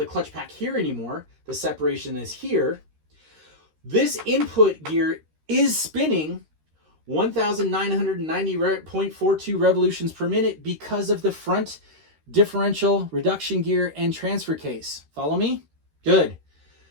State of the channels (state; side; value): late; left; 13 ms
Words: clutch pack here anymore, the separation is here, this input gear is spinning 1,990.42 revolutions per minute because of the front differential, reduction gear, and transfer case. Follow me? Good.